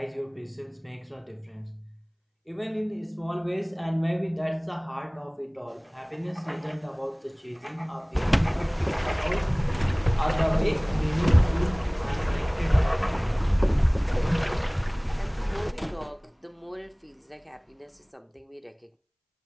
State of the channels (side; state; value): both; identical; correlation 1.00